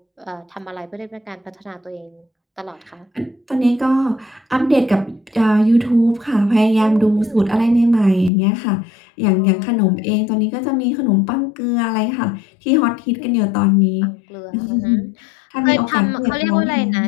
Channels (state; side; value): drops out; right; at 8.3 s